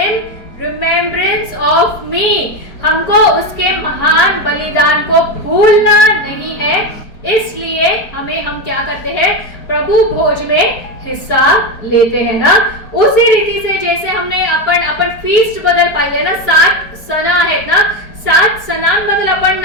remembrance of me. हमको उसके महान बलिदान को भूलना नहीं है, इसलिए हम क्या करते हैं, प्रभु भोज में हिस्सा लेते हैं ना. उसी रीती से जैसे हमने आपण फीस्ट बद्दल पाहिले ना, 7 सण आहेत ना, 7 सणांबद्दल आपण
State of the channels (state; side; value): late; right; 4.4 ms